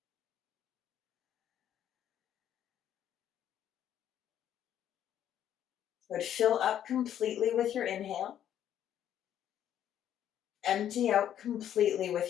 Good. Fill up completely with your inhale. Empty out completely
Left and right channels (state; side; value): quieter; right; 10.5 dB